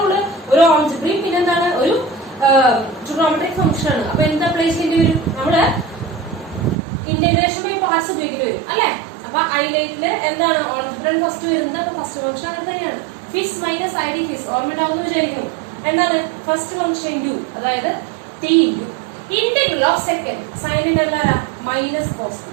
ഒരു ഓൾജിബ്രയും പിന്നെ എന്താണ്? ഒരു ട്രിഗണോമെട്രിക് ഫംഗ്ഷൻ ആണ്. അപ്പൊ എന്താ അപ്ലൈ ചെയ്യേണ്ടി വരും? നമ്മള് ഇന്റഗ്രേഷൻ ബൈ പാർട്സ് ഉപയോഗിക്കേണ്ടി വരും അല്ലെ. അപ്പൊ ഐലൈറ്റില് എന്താണ് ഓൾജിബ്രൻ ഫസ്റ്റ് വരുന്നത്? അപ്പൊ ഫസ്റ്റ് ഫംഗ്ഷൻ അങ്ങനെ തന്നെയാണ്. First minus I D first ഓർമ്മയുണ്ടാവുന്ന വിചാരിക്കുന്നു. എന്താണ് ഫസ്റ്റ് ഫംഗ്ഷൻ? ഇൻറ്റു, അതായത് T into integral of second. സൈനിന്റെ എന്താ? Minus cos.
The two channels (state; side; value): drops out; left; at 6.8 s